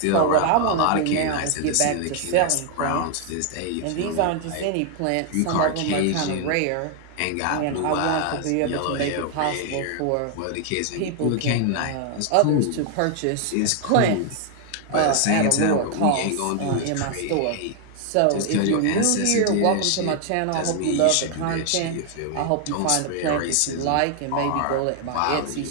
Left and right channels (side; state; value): both; different; correlation 0.00